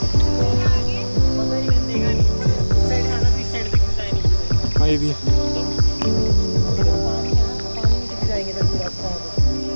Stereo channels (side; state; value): both; inverted; correlation -1.00